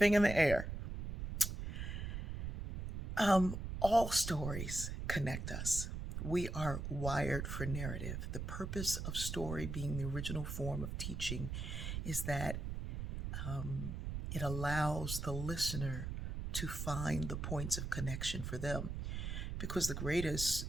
the air. All stories connect us. We are wired for narrative. The purpose of story being the original form of teaching is that it allows the listener to find the points of connection for them. Because the greatest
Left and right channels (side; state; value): right; noise; rumble, 4 dB below the sound